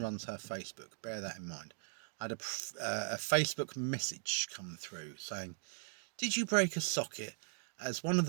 her Facebook. Bear that in mind. I had a Facebook message come through saying, did you break a socket? As one of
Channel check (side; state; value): left; silent; digital silence